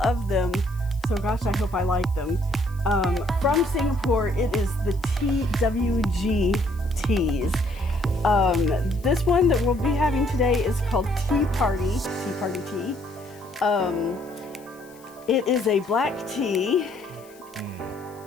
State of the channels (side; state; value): left; noise; hiss, 26 dB below the sound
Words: them, so gosh, I hope I like them. From Singapore, it is the TWG teas. This one that we'll be having today is called Tea Party tea. It is a black tea,